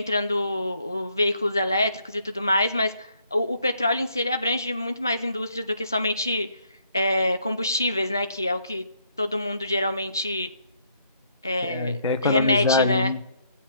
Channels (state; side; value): inverted; both; correlation -0.70